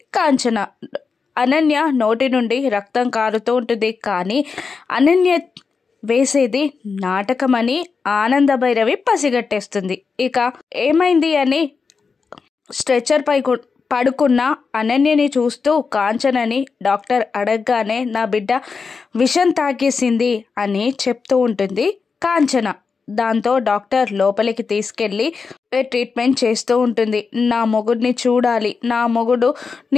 కాంచన. అనన్య నోటి నుండి రక్తం కారుతూ ఉంటుంది. కానీ అనన్య వేసేది నాటకమని ఆనంద భైరవి పసిగట్టేస్తుంది. ఇక ఏమైంది అని స్ట్రెచర్ పై పడుకున్న అనన్యని చూస్తూ కాంచనని డాక్టర్ అడగగానే నా బిడ్డ విషం తాగేసింది అని చెప్తూ ఉంటుంది కాంచన. దాంతో డాక్టర్ లోపలికి తీసుకెళ్ళి ట్రీట్మెంట్ చేస్తూ ఉంటుంది. నా మొగుడిని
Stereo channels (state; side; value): quieter; right; 5.1 dB